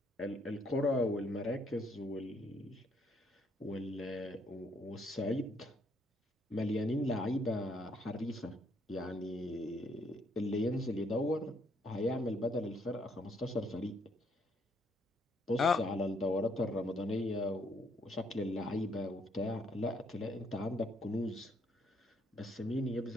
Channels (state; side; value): normal; both; correlation 0.70